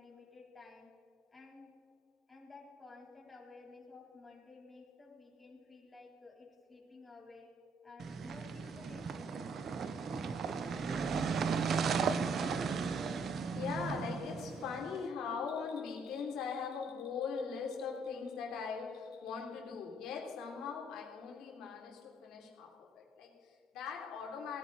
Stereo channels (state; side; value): normal; both; correlation 0.66